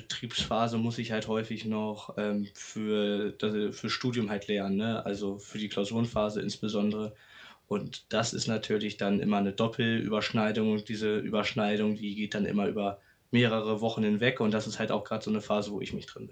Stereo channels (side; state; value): both; identical; correlation 1.00